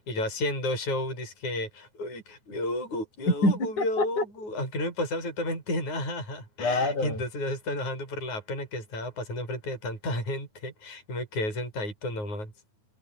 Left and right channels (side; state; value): right; late; 9.5 ms